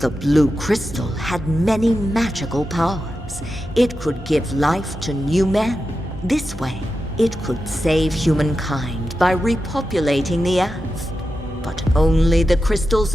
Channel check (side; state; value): both; normal; correlation 0.90